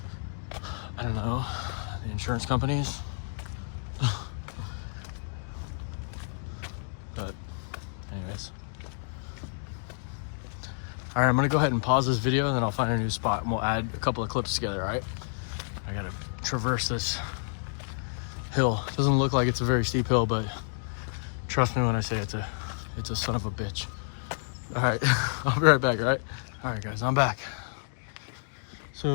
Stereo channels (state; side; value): silent; right; digital silence